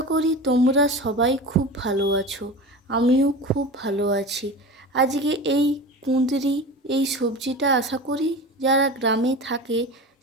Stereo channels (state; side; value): normal; both; correlation 0.31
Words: করি তোমরা সবাই খুব ভালো আছো, আমিও খুব ভালো আছি। আজকে এই কুঁদরি, এই সবজিটা আশা করি যারা গ্রামে থাকে